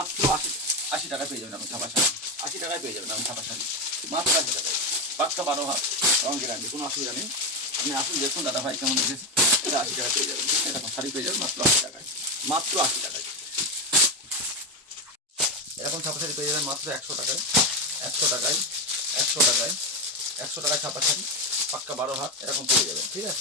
80 টাকায় পেয়ে যাবেন আপনি ছাপা শাড়ি। 80 টাকায় পেয়ে যাবেন আপনি ছাপা শাড়ি মাত্র 80 টাকায়। পাক্কা 12 হাত রঙ গ্যারান্টি, কোনো অসুবিধা নেই। আপনি আসুন দেখুন দাদা ভাই কেমন দেখেছি। এটা 80 টাকা পেয়ে যাবেন। এরকম শাড়ি পেয়ে যাবেন মাত্র 80 টাকায়, মাত্র 80 টাকায়। এরকম ছাপা শাড়ি পেয়ে যাবেন মাত্র 100 টাকায়, 100 টাকায়, 100 টাকায়, 100 টাকায় ছাপা শাড়ি পাক্কা 12 হাত এরকম পেয়ে যাবেন। ঠিক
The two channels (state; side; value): normal; both; correlation 0.12